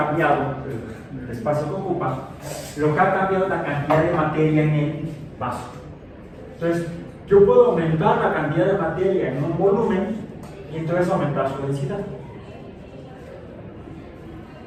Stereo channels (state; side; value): identical; both; correlation 1.00